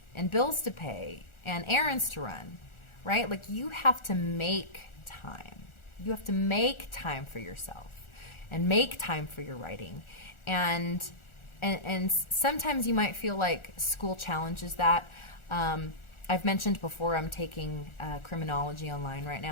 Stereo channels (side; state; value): right; late; 1.4 ms